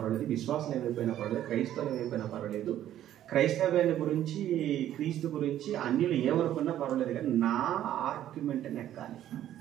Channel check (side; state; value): left; quieter; 11.9 dB